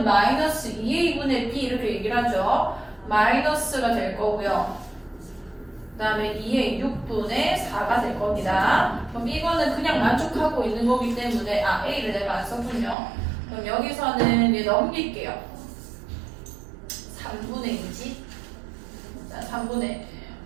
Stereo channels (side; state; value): left; drops out; at 13.0 s